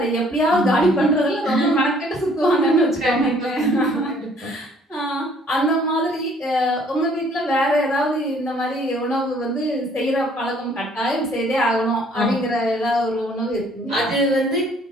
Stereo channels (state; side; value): normal; both; correlation 0.60